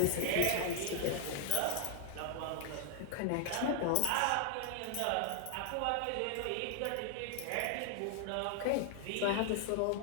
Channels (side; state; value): both; different; correlation 0.00